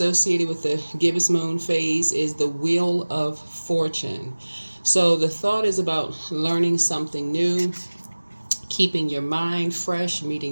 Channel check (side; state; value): both; inverted; correlation -1.00